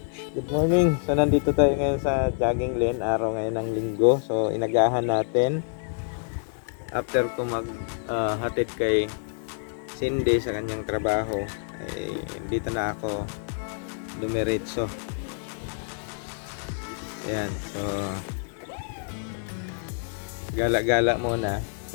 good morning. So, nandito tayo ngayon sa jogging lane. Araw ngayon ng linggo. So, inagahan natin. After ko hatid kay Cindy sa kanyang trabaho, ay dito na ako dumiretso. Ayan. So, gala-gala muna.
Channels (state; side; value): silent; right; digital silence